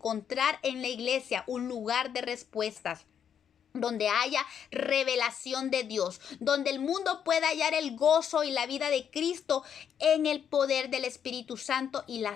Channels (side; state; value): right; quieter; 8.3 dB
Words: en la iglesia un lugar de respuestas, donde haya revelación de Dios, donde el mundo pueda hallar el gozo y la vida de Cristo en el poder del Espíritu Santo y la